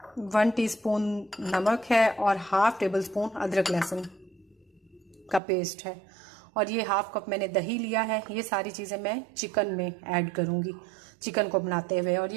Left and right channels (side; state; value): left; drops out; at 5.4 s